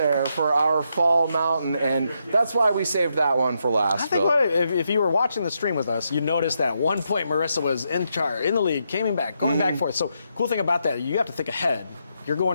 for our Fall Mountain, and that's why we saved that one for last. I think if you were watching the stream with us, you'd notice that at one point Marissa was in the lead, going back and forth. So cool thing about that, you have to think ahead. You're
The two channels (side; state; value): both; inverted; correlation -0.81